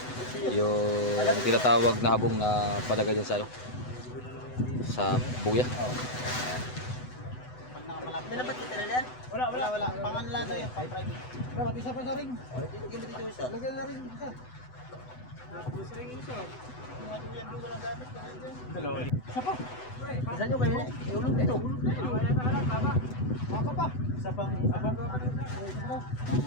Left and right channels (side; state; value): right; late; 8.0 ms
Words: Yung tinatawag na habong na palagay dyan sa ano, sa buya. Minabat kita na yan? Wala. Panganla na yan, pang-private. Dapat isa pa sa ring. Tigil mo dito isa. Lagyan na rin isa. Gusto rin isa. Maduyan doon walang gamit. Isa pa. Isa nyo kayo. Iulog dito. Baka pa. Isa pang...